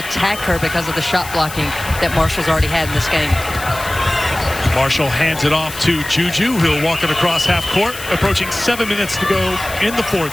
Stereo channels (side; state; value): left; noise; hiss, 12 dB below the sound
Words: her because of the shot blocking that Marshall's already had in this game. Marshall hands it off to Juju. He'll walk it across half court. Approaching 7 minutes to go in the